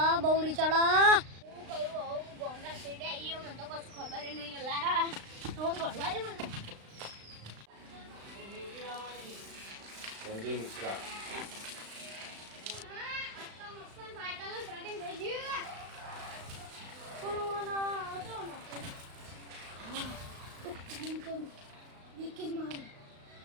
હું કહ્યું ગોમના શેડે આવીએ મને તો કશું ખબર નહીં અલ્લા તો ઘરવા દે મને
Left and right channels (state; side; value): late; left; 35 ms